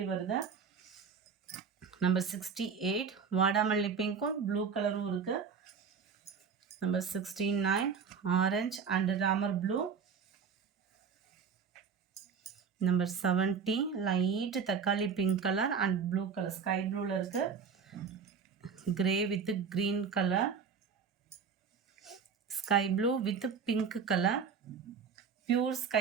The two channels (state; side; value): quieter; left; 6.3 dB